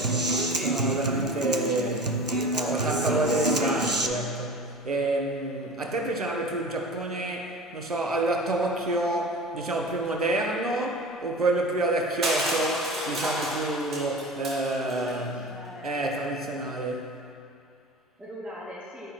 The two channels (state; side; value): normal; both; correlation 0.36